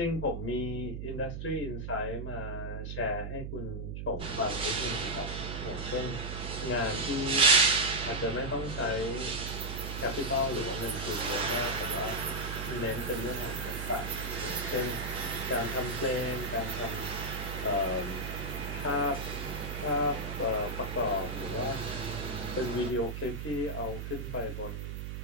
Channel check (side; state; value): right; noise; hum, 5 dB below the sound